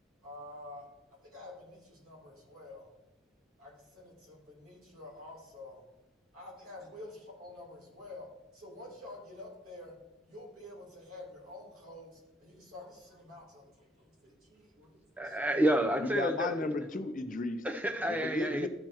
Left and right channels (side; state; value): both; normal; correlation 0.69